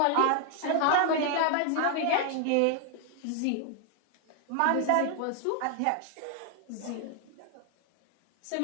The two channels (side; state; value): both; different; correlation 0.00